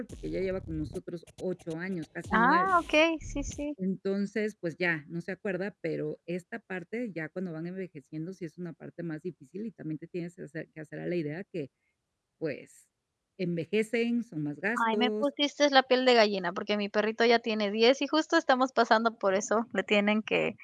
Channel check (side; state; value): both; identical; correlation 1.00